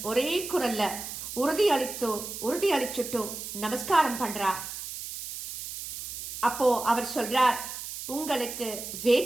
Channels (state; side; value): noise; right; hiss, 8 dB below the sound